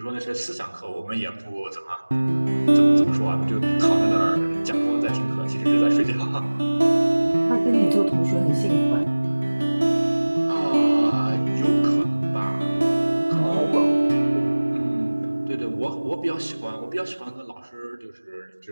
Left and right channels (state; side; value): inverted; both; correlation -1.00